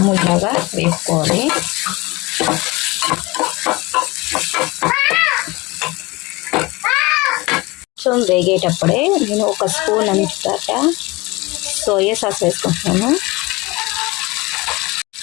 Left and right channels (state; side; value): quieter; right; 23.1 dB